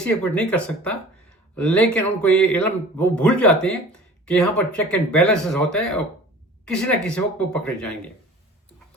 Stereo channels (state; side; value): normal; both; correlation 0.44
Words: ہے، کچھ نہیں کر سکتا، لیکن ان کو یہ علم وہ بھول جاتے ہیں کہ یہاں پر چیک اینڈ بیلنسز ہوتا ہے اور کسی نہ کسی وقت وہ پکڑے جائیں گے۔